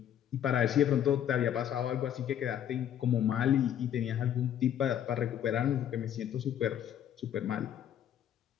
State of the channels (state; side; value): quieter; right; 10.1 dB